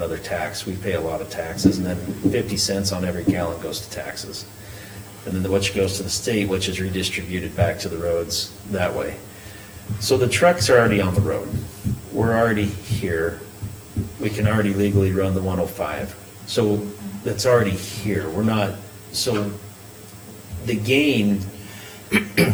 tax, we pay a lot of taxes, and then 50 cents on every gallon goes to taxes. And then which goes to the state, which is redistributed back to the roads that way. So the trucks are already on the road, we're already here, we can already legally run the 105, so that's already here, we're not, so the gain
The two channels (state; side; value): identical; both; correlation 1.00